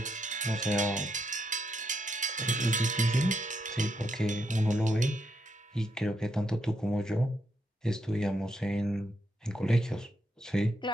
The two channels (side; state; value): both; normal; correlation 0.79